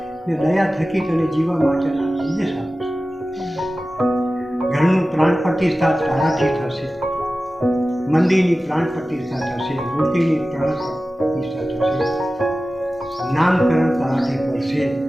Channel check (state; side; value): normal; both; correlation 0.95